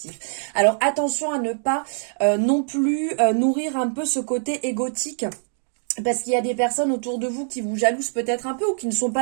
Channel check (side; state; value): left; silent; digital silence